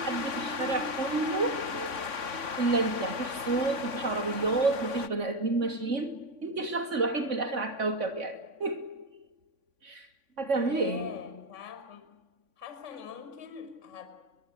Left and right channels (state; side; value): late; left; 3.5 ms